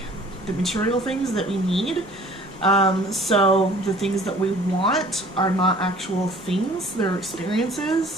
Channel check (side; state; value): left; noise; rumble, 24 dB below the sound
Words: the material things that we need. So the things that we want are not actual things, they're